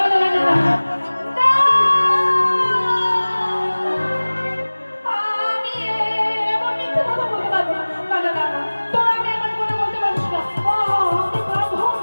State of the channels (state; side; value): inverted; both; correlation -1.00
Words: এমন মিথ্যে কথা বলতে পারবো না। না না না না, তোরা আমি এমন কথা বলতে পারিস না।